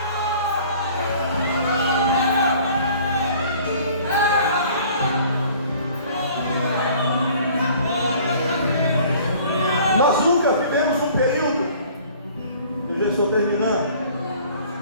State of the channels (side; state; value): both; inverted; correlation -0.51